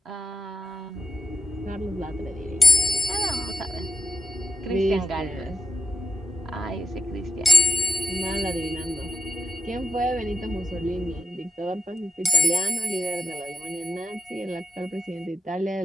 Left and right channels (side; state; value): both; normal; correlation 0.78